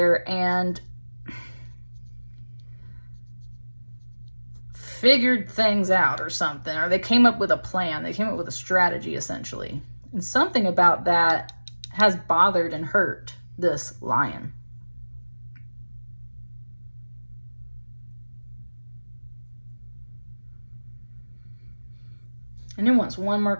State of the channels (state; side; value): inverted; both; correlation -1.00